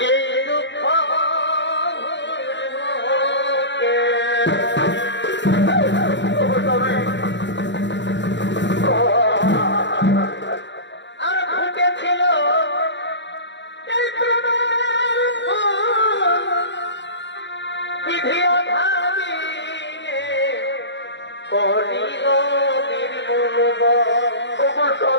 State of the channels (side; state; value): right; late; 0.52 ms